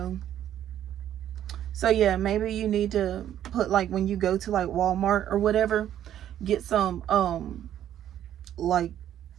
So yeah, maybe you need to put, like, when you go to like Walmart or whatever, get some like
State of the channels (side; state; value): left; quieter; 11.0 dB